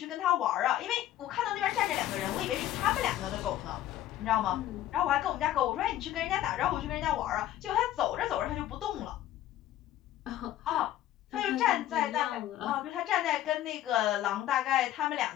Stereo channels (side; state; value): right; quieter; 12.9 dB